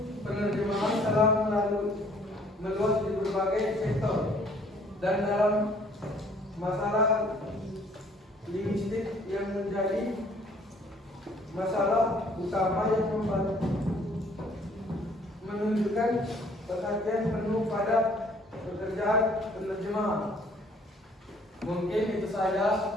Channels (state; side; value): normal; both; correlation 0.59